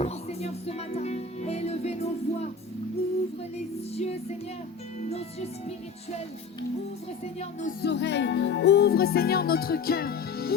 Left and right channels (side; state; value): right; quieter; 5.1 dB